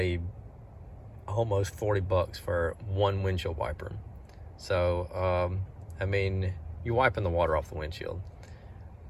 almost 40 bucks for one windshield wiper. So I mean, you're wiping the water off the windshield,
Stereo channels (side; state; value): both; identical; correlation 1.00